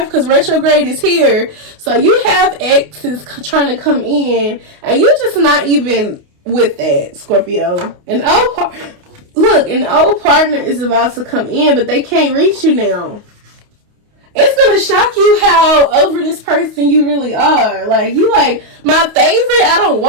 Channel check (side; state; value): left; late; 28 ms